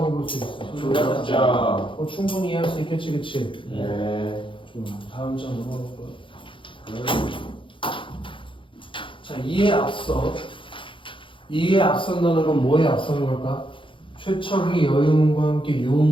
볼 수 있어? 조력자. 충분히 이해할 수 있겠지, 그치? 네. 좋아. 다음 장 넘어갈 거야. 자, 이에 앞선다는 건 뭐에 앞서는 걸까? 최척이 여유문과 함께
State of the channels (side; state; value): right; late; 0.25 ms